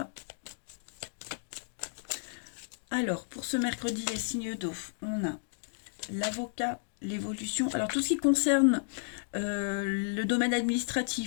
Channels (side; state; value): right; silent; digital silence